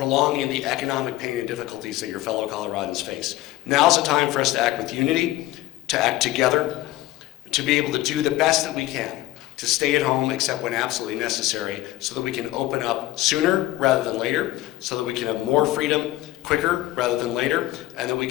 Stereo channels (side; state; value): right; quieter; 16.6 dB